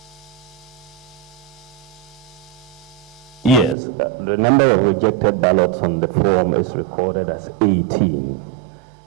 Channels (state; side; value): drops out; left; at 3.8 s